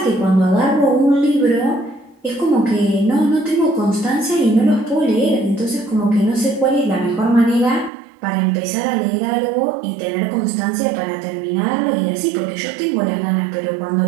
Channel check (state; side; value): drops out; left; at 7.9 s